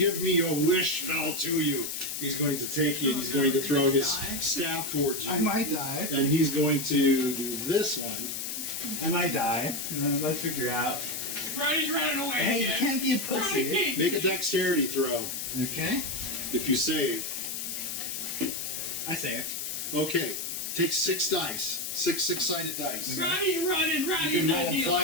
me your wish spell to you. He's going to take you and he's going to throw his staff towards you. might die. And he's going to do this one. I might die. Let's figure out. Roddy's running away. Hey, you again. can't be a Roddy pussy. can't. Make a dexterity throw. Okay. If you save. I saved. Okay. Take 6 dice. 6 6-sided dice. Roddy's running. You Roddy's can not roll dealing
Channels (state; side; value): noise; left; hiss, 4 dB below the sound